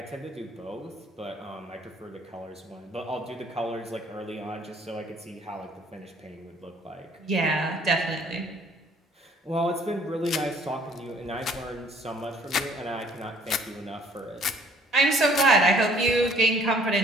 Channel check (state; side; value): normal; both; correlation 0.58